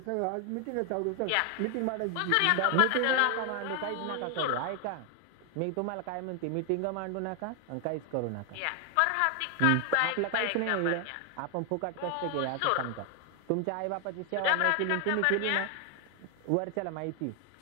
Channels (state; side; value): different; both; correlation 0.00